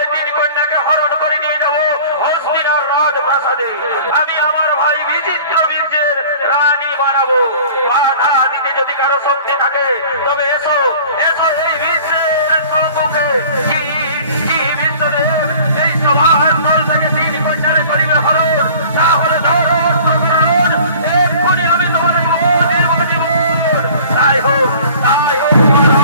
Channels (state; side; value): inverted; both; correlation -0.46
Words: 3 কন্যাকে হরণ করে নিয়ে যাব হস্তিনার রাজপ্রাসাদে। আমি আমার ভাই বিচিত্র বীর্যের রানী বানাবো। বাধা দিতে যদি কারো শক্তি থাকে তবে এসো, এসো এই বিশ্বের সম্মুখে। কি কি বিশ্বদেব এই সভার দল থেকে 3 কন্যারে করিবে হরণ, তাহলে ধরুন ধরুন, এক্ষুনি আমি তোমাদেরকে দিব জীবন। তাই হোক, তাই হোক